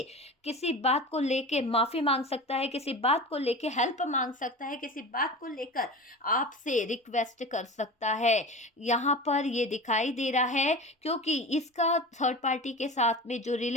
किसी बात को लेके माफ़ी मांग सकता है, किसी बात को लेके हेल्प मांग सकता है, किसी बात को लेकर आपसे रिक्वेस्ट कर सकता है। यहाँ पर ये दिखाई दे रहा है, क्योंकि इसका थर्ड पार्टी के साथ में जो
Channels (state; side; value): normal; both; correlation 0.32